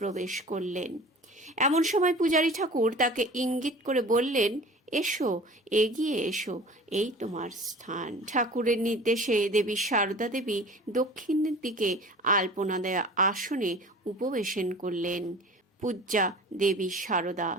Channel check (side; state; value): both; normal; correlation 0.42